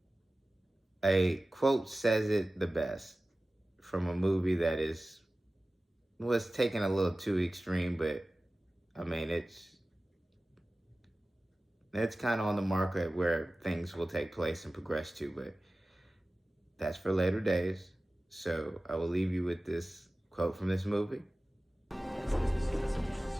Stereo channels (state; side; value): normal; both; correlation 0.97